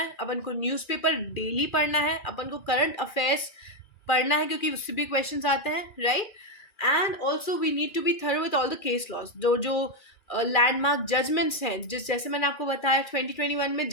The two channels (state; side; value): late; right; 2.5 ms